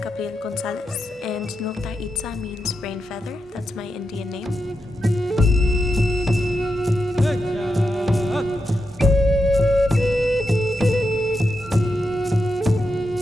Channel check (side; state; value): both; normal; correlation 0.87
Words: Gabriel Gonzalez, and Nultaitza means rain feather. That's my Indian name.